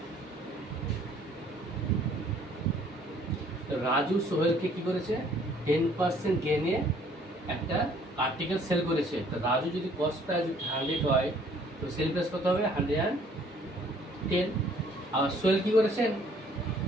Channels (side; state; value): both; normal; correlation 0.59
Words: রাজু সোহেলকে কি করেছে? 10% গেনে একটা আর্টিকেল সেল করেছে। তো রাজু যদি কস্ট প্রাইস 100 হয়, তো সেল প্রাইস কত হবে? 110। আর সোহেল কি করেছেন?